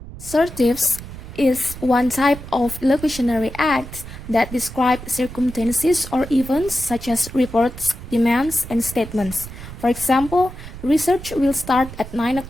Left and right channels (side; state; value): right; noise; rumble, 12 dB below the sound